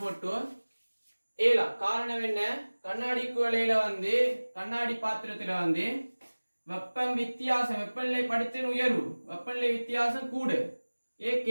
போட்டு ஏலாம். காரணம் என்ன? கண்ணாடி குவளையில கண்ணாடி பாத்திரத்துல வெப்பம் வித்தியாசம், வெப்பநிலை படித்தின் உயர்வு, வெப்பநிலை வித்தியாசம் கூடு,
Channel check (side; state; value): both; inverted; correlation -1.00